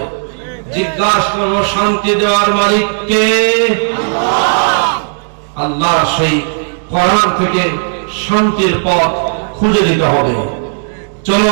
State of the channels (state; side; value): silent; left; 66 dB below the other